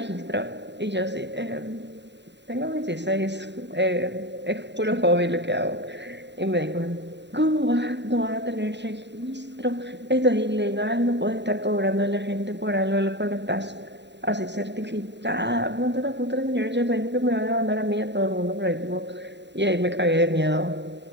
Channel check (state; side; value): late; left; 0.51 ms